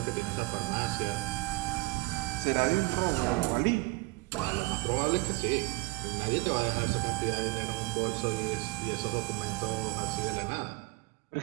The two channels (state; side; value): quieter; left; 23.5 dB